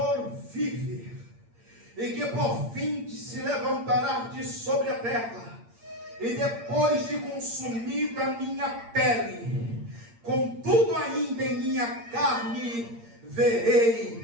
vive, e que por fim se levantará de sobre a terra, e depois de consumida a minha pele, contudo ainda em minha carne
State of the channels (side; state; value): left; late; 8.7 ms